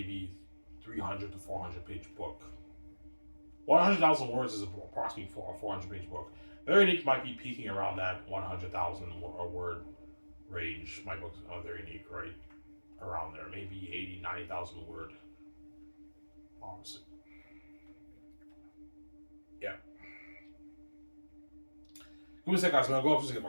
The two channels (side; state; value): both; inverted; correlation -1.00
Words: 300 to 400 page book. 100,000 words is approximately a 400 page book. Their unique might be peaking around that 100,000 word range. My book's very unique, right? Around there, maybe 80, 90,000 word. Honestly. Yeah. Give me a sec, guys. I'm gonna go up and get